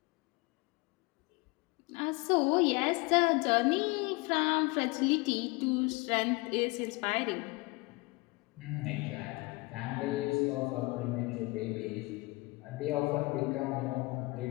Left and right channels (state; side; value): quieter; right; 24.8 dB